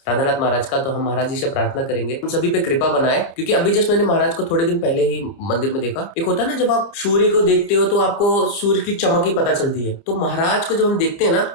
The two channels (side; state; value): right; late; 29 ms